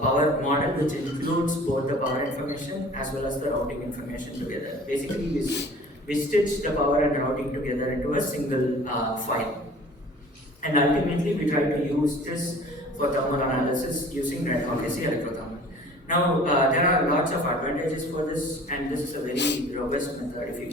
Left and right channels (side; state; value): both; normal; correlation 0.46